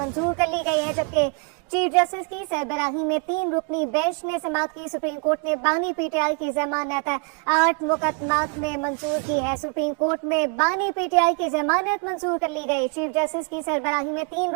कर ली गई है, जबकि चीफ जस्टिस की सरबराही में 3 रुकनी बेंच ने समाअत की। सुप्रीम कोर्ट ने बानी पीटीआई की जमानत 8 मुकदमात में मंजूर की है। सुप्रीम कोर्ट में बानी पीटीआई की जमानत मंजूर कर ली गई। चीफ जस्टिस की सरबराही में 3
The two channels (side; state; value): left; quieter; 35.7 dB